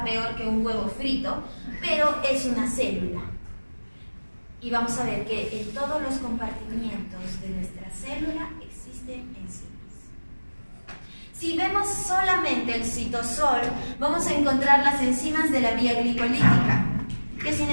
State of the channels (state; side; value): inverted; both; correlation -1.00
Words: peor que un huevo frito, pero es una célula. Y vamos a ver que en todos los compartimientos de nuestra célula existen enzimas. Si vemos solamente el citosol, vamos a encontrar las enzimas de la vía glicolítica, que sin